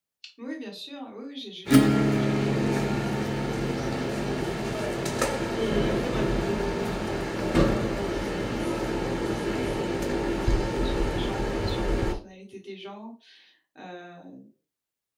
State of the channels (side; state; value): both; identical; correlation 1.00